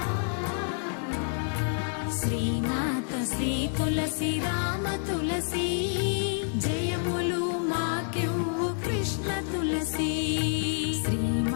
శ్రీమాత శ్రీ తులసి రామ తులసి జయములు మాకివ్వు కృష్ణ తులసి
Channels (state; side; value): silent; right; 59 dB below the other